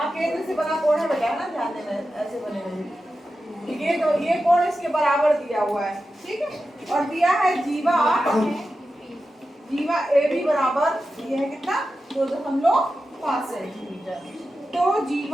केंद्र से बना कोण है बेटा, है ना, ध्यान देना, ऐसे बने हुए ये, तो ये कोण इसके बराबर दिया हुआ है। ठीक है, और दिया है जीवा, जीवा ए बी बराबर ये है कितना, 2.5 सेंटीमीटर। तो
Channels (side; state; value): both; normal; correlation 0.91